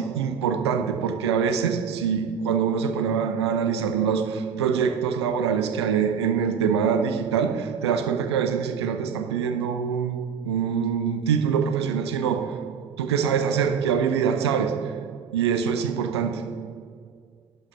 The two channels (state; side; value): quieter; left; 6.8 dB